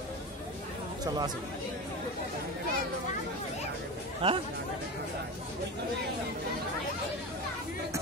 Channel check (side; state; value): both; normal; correlation 0.25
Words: চলো আসি। হ্যাঁ